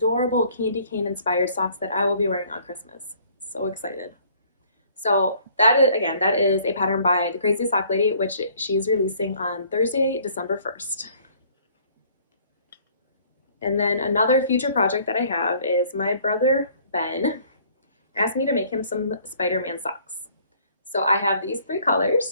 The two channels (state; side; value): inverted; both; correlation -0.58